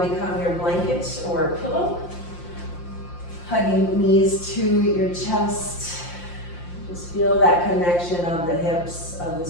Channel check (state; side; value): late; right; 5.7 ms